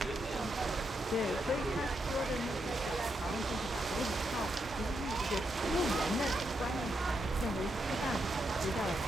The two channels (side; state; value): both; normal; correlation 0.82